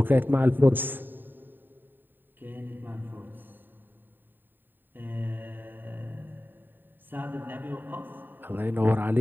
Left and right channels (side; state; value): left; late; 0.093 ms